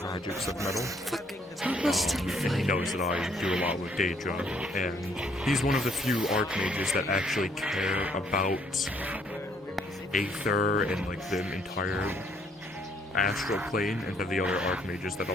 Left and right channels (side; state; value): both; normal; correlation 0.66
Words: magics of metal. And he knows that I do a lot with Daedra. And he's one of the few Archmages that actually care about Aether and like the entire astral plane, and to the other Archmages that a